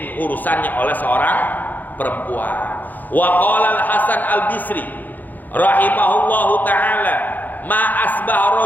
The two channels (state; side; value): late; right; 0.085 ms